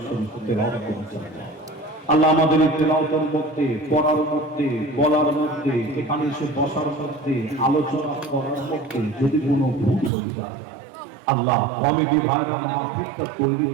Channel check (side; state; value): left; drops out; at 10.1 s